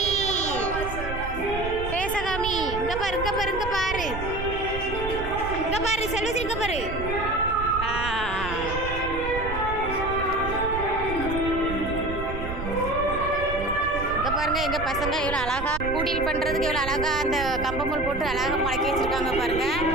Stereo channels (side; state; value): right; noise; rumble, 7 dB below the sound